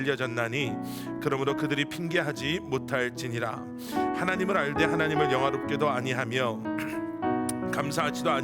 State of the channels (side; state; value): both; identical; correlation 1.00